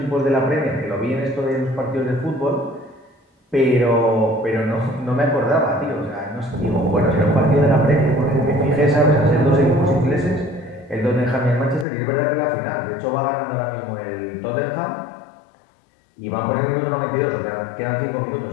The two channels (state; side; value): drops out; right; at 11.9 s